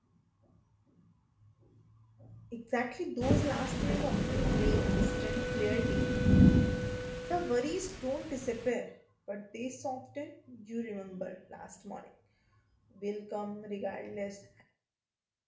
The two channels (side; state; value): both; identical; correlation 1.00